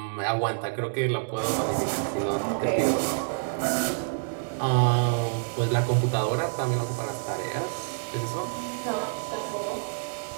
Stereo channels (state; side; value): silent; left; digital silence